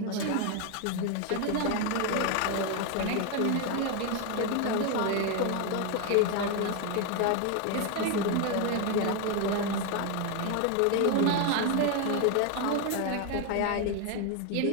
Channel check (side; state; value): both; different; correlation 0.01